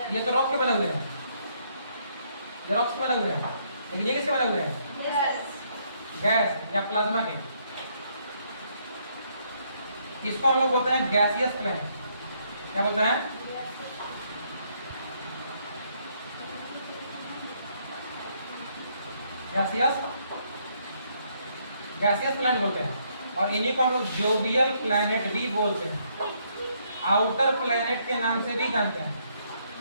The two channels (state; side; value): inverted; both; correlation -0.71